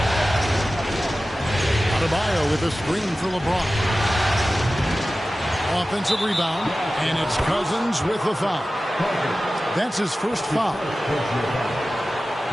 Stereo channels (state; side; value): normal; both; correlation 0.95